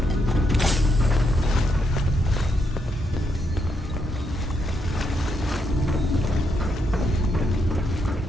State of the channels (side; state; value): both; normal; correlation 0.78